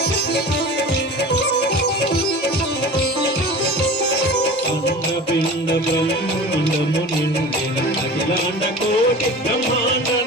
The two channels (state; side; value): normal; both; correlation 0.37